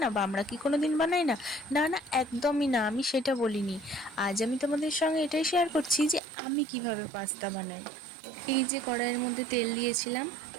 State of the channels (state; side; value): drops out; left; at 6.2 s